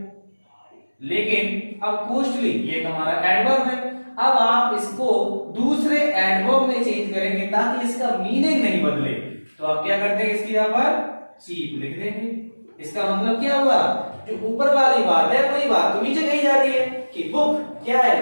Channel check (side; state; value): both; inverted; correlation -1.00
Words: लेकिन अब कॉस्टली ये हमारा एडवर्ब है, अब आप इसको दूसरे एडवर्ब में चेंज करेंगे ताकि इसका मीनिंग नहीं बदले। तो आप क्या करते हैं, इसकी यहाँ पर चीप लिख देंगे। इसका मतलब क्या हुआ, जो ऊपर वाली बात है वही बात तो नीचे कही जा रही है कि बुक क्या